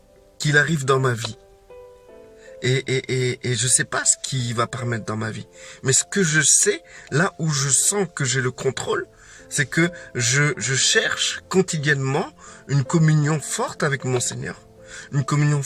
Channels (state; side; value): identical; both; correlation 1.00